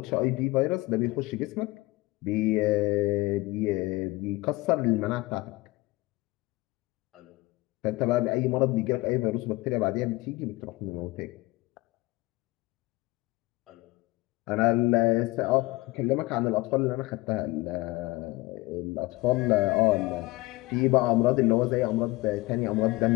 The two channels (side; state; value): right; quieter; 21.2 dB